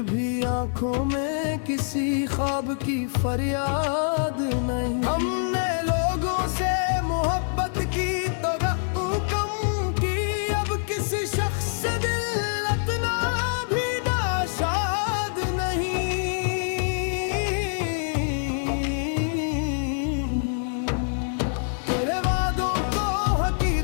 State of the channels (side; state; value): right; silent; digital silence